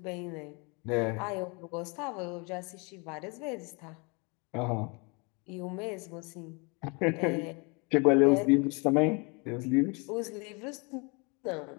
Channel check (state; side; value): quieter; right; 30.8 dB